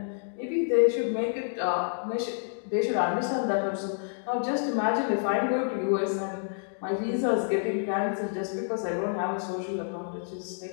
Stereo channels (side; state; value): right; silent; digital silence